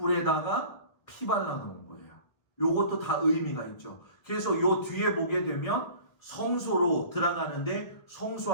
피 발라놓은 거예요. 요것도 다 의미가 있죠. 그래서 요 뒤에 보게 되면 성소로 들어가는데 성소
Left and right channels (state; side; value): late; right; 1.7 ms